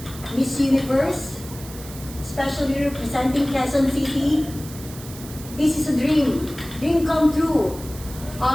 Miss Universe, especially representing Quezon City, this is a dream come true.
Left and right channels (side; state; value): right; noise; hiss, 16 dB below the sound